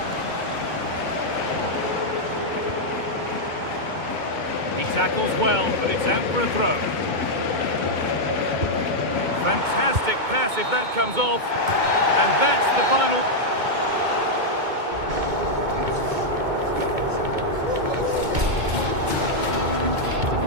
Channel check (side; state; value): left; late; 2.2 ms